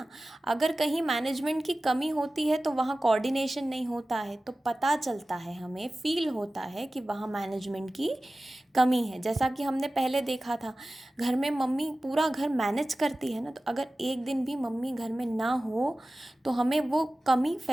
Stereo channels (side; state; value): both; normal; correlation 0.96